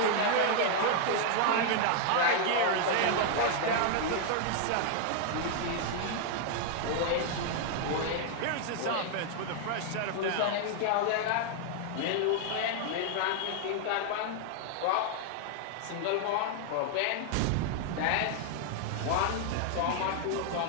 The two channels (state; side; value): different; both; correlation 0.00